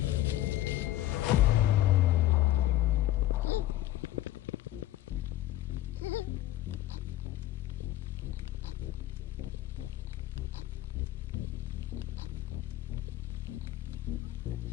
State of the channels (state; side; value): quieter; right; 14.4 dB